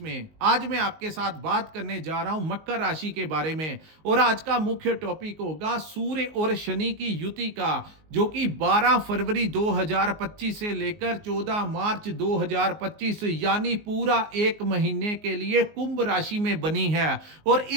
आज मैं आपके साथ बात करने जा रहा हूं मकर राशि के बारे में और आज का मुख्य टॉपिक होगा सूर्य और शनि की युति का, जो कि 12 फरवरी 2025 से लेकर 14 मार्च 2025 यानी पूरा एक महीने के लिए कुंभ राशि में बनी है। और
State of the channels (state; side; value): late; left; 19 ms